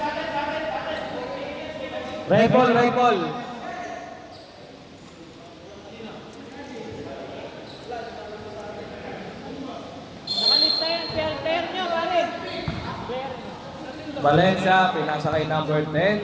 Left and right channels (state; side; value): identical; both; correlation 1.00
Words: Red ball, red ball. Nakalista yan. Pair nyo, pare. Pair. Valencia, pinasa kay number